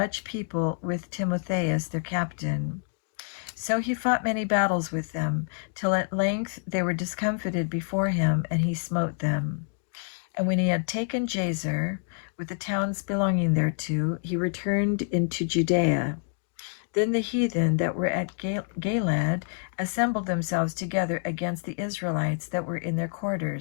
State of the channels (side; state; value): right; silent; digital silence